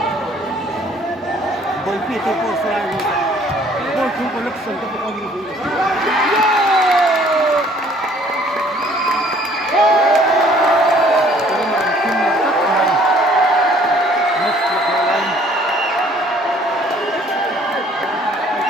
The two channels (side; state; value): both; normal; correlation 0.58